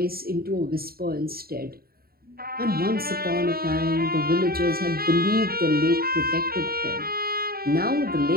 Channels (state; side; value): late; left; 0.44 ms